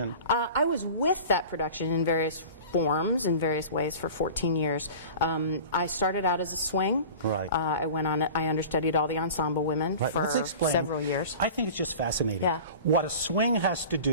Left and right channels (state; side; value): inverted; both; correlation -0.38